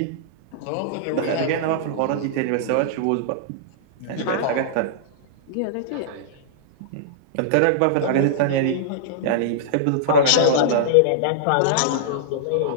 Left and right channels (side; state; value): both; different; correlation -0.02